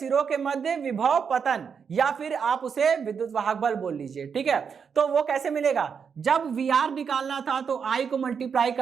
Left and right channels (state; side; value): quieter; left; 6.5 dB